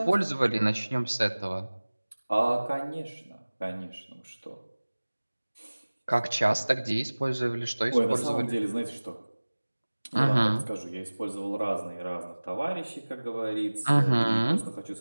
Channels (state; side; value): inverted; both; correlation -1.00